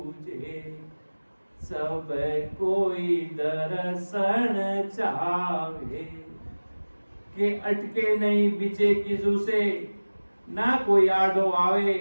सब कोई दर्शन चावे के अटके नहीं बीचे किसू से ना कोई आडो आवे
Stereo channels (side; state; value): both; inverted; correlation -1.00